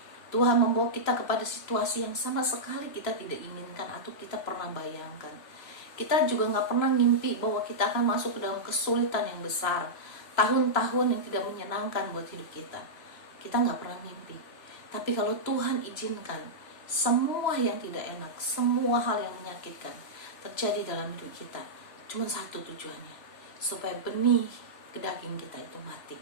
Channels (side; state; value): right; late; 3.0 ms